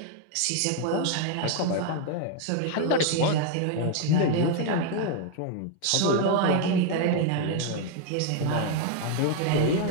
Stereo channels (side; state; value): both; different; correlation 0.01